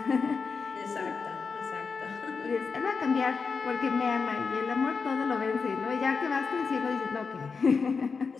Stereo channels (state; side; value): quieter; right; 5.1 dB